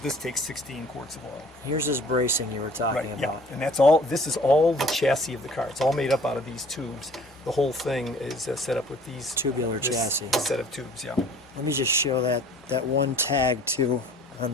this takes 16 quarts of oil. Here's this bracing you were talking about. And that's all. This is all the chassis of the car. It's all made up out of these tubes. The whole thing is set up with these Tubular chassis. set of tubes. Yeah. Let me just show that one tag too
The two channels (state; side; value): normal; both; correlation 0.51